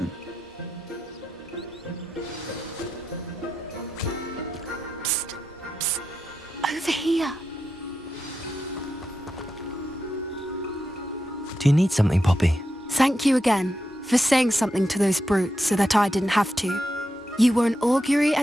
Psst, psst. Over here. Do you need something, Poppy? Thank you again for saying something to those brutes so that I didn't have to. You were an augury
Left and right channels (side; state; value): both; normal; correlation 0.87